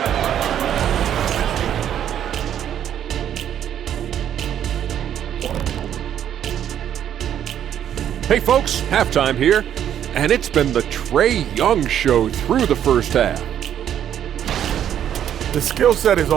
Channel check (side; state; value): left; quieter; 10.0 dB